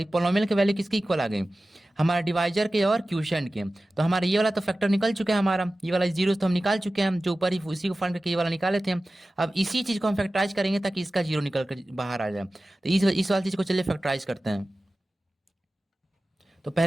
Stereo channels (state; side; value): normal; both; correlation 0.96